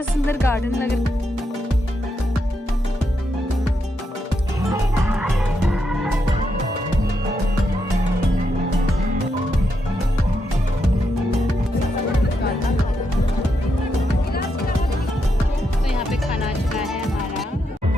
सुंदर गार्डन लग रहा है।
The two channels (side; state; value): both; normal; correlation 0.82